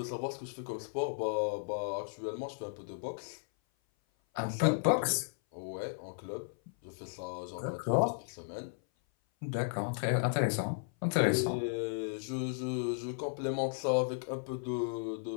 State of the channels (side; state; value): right; silent; 55 dB below the other